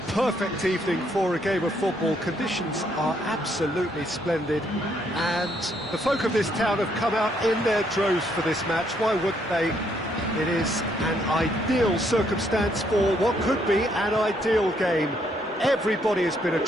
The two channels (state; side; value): normal; both; correlation 0.71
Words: perfect evening for a game of football. Conditions are absolutely splendid and the folk of this town have come out in their droves for this match. Why wouldn't they? It is an ideal circumstance for what could be an ideal game. Everybody has been